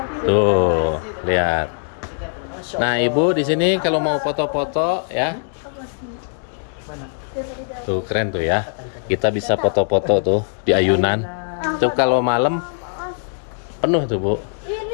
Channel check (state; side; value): silent; right; digital silence